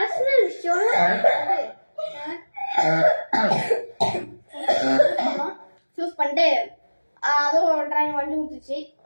விஷயம் சூஸ் பண்ணிட்டு அதுவும் டிராயிங் வண்டி ஊத்துச்சு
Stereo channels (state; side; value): inverted; both; correlation -1.00